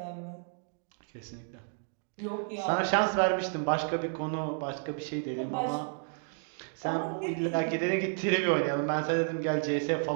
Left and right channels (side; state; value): left; silent; 57 dB below the other